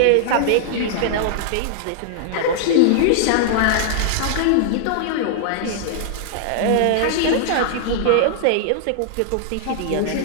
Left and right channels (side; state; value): both; different; correlation -0.01